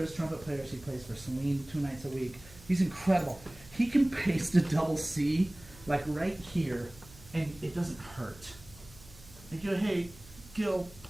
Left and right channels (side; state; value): right; noise; hum, 21 dB below the sound